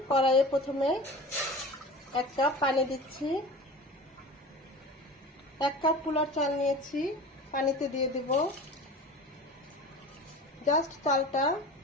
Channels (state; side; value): normal; both; correlation 0.35